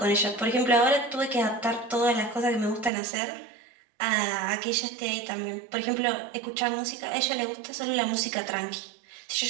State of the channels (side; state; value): left; drops out; at 2.9 s